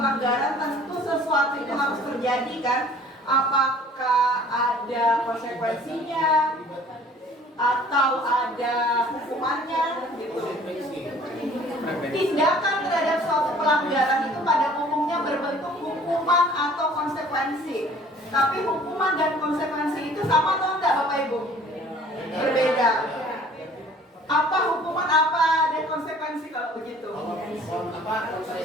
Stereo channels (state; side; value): normal; both; correlation 0.52